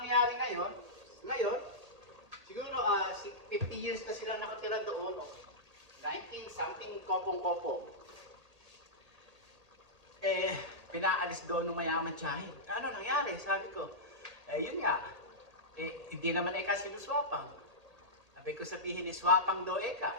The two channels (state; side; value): late; left; 1.8 ms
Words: ngayon, siguro 50 years na silang nakatira doon, 19-something kopong-kopo. Pinaalis doon ng mayaman tiyahin. Ano nangyari? Sabi ko, yun nga, hindi naman kasi sinuswapang. Sabi ko sabihin, swapang daw